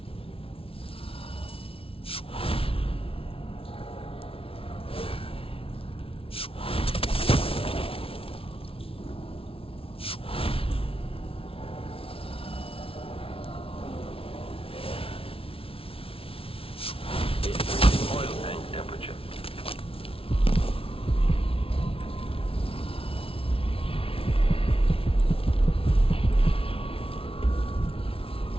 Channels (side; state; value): right; late; 0.26 ms